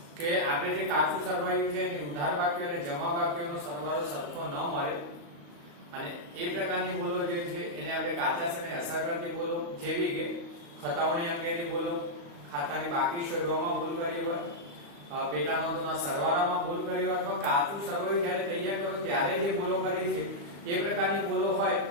કે આપણે જે કાચું સરવાયું છે એની ઉધાર બાકીઓ અને જમા બાકીઓનો સરવાળો સરખો ન મળે, અને એ પ્રકારની ભૂલો જે છે એને આપણે કાચા સર્વેને અસર કરતી ભૂલો, જેવી કે ખતાવણી અંગેની ભૂલો, ખાતાની બાકી શોધવામાં ભૂલ કરી હોય, પેટા નોંધોના સરવાળામાં ભૂલ કરી હોય, અથવા કાચું સરવાયું જ્યારે તૈયાર કરો ત્યારે જે ભૂલો કરી છે એ પ્રકારની ભૂલો હોય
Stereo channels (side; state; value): left; late; 35 ms